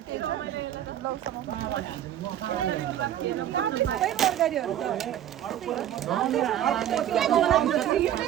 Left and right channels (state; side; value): quieter; left; 11.1 dB